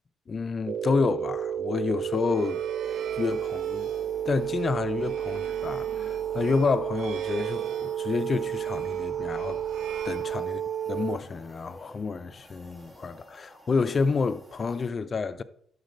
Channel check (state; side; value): normal; both; correlation 0.76